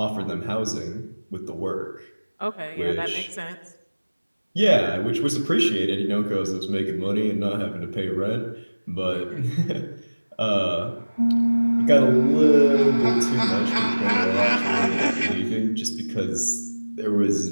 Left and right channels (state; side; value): inverted; both; correlation -1.00